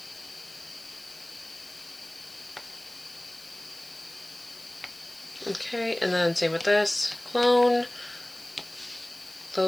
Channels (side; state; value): left; noise; hiss, 20 dB below the sound